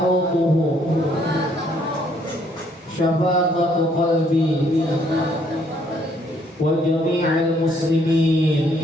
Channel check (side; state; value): both; normal; correlation 0.67